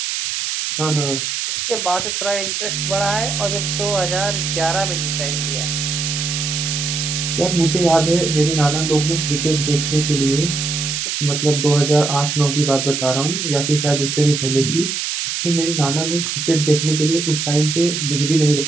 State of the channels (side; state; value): right; noise; hiss, 2 dB below the sound